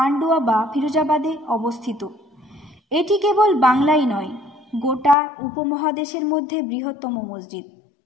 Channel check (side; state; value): right; drops out; at 5.2 s